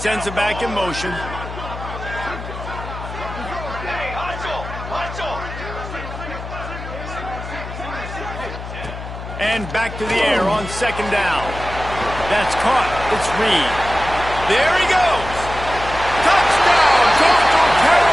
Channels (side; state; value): left; noise; hum, 10 dB below the sound